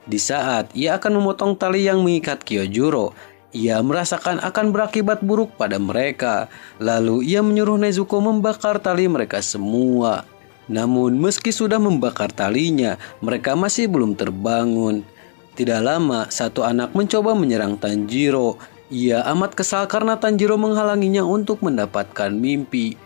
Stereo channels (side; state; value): right; silent; digital silence